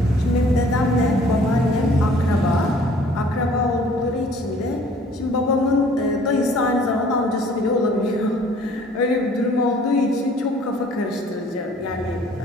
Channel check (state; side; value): normal; both; correlation 0.54